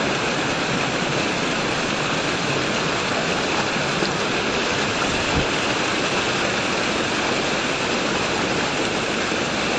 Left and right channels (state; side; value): identical; both; correlation 1.00